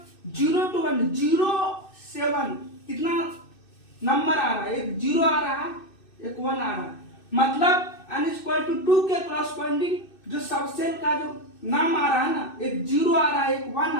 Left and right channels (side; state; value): right; late; 2.6 ms